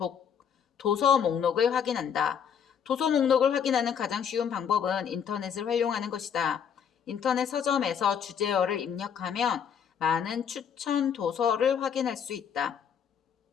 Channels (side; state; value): right; quieter; 7.8 dB